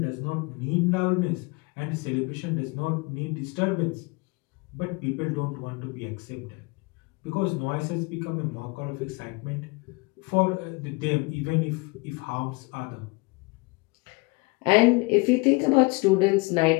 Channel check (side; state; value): right; quieter; 26.9 dB